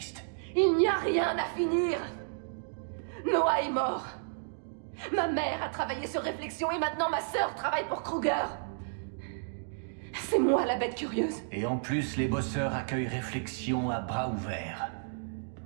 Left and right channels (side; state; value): left; silent; digital silence